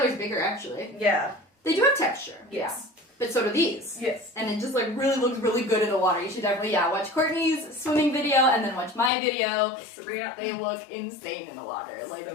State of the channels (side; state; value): right; drops out; at 9.1 s